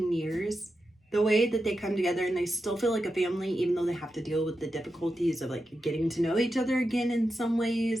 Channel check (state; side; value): normal; both; correlation 0.89